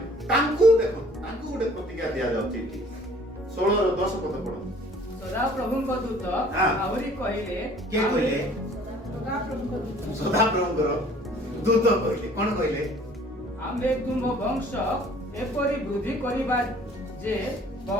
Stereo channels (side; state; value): both; normal; correlation 0.53